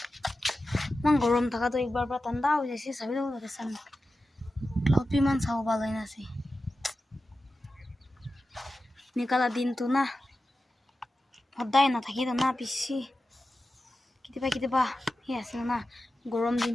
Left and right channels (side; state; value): both; normal; correlation 0.93